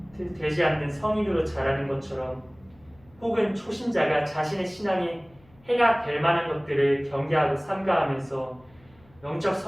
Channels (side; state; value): left; noise; hum, 29 dB below the sound